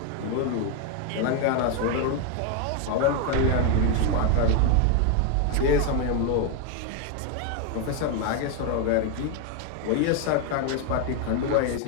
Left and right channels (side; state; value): both; different; correlation 0.01